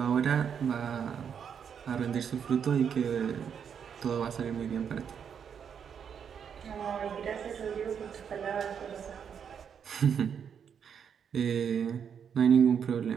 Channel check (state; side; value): quieter; left; 7.5 dB